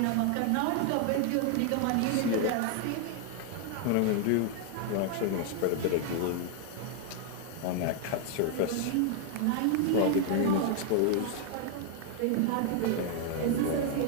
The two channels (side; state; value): both; different; correlation 0.00